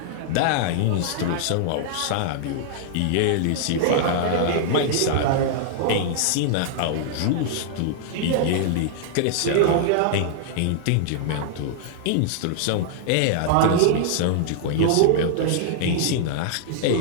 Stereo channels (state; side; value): different; both; correlation -0.01